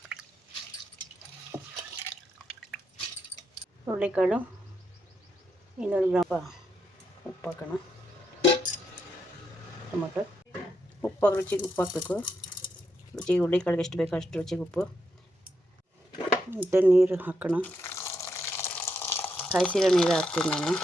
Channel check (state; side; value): normal; both; correlation 0.81